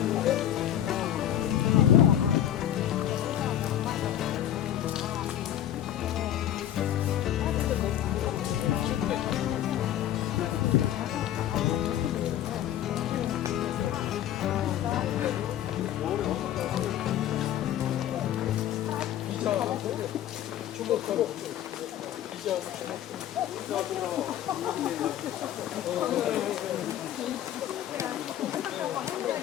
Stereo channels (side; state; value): right; quieter; 11.4 dB